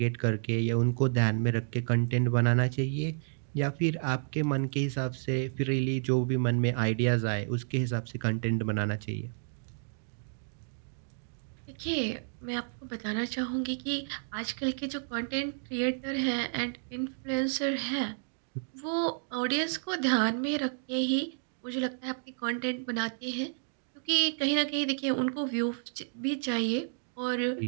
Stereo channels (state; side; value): silent; left; digital silence